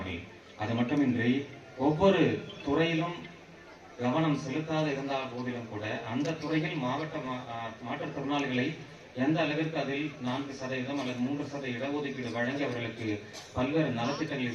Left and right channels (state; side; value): identical; both; correlation 1.00